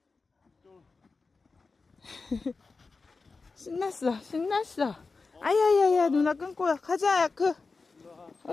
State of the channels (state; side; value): quieter; right; 4.2 dB